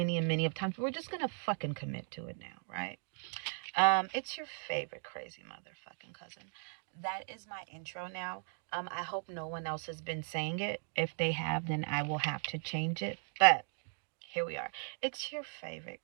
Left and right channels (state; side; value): silent; left; 53 dB below the other